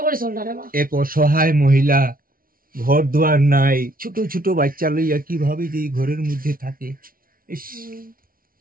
এক অসহায় মহিলা, ঘর দুয়ার নাই, ছোট ছোট বাচ্চা লইয়া কিভাবে যে ঘরের মধ্যে থাকে, ইস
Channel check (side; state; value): left; late; 0.42 ms